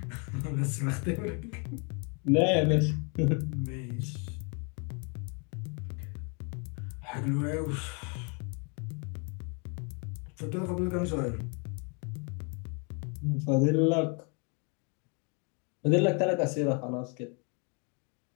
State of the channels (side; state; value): right; quieter; 35.5 dB